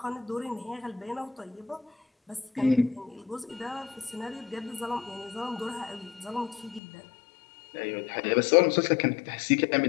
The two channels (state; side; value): drops out; right; at 6.8 s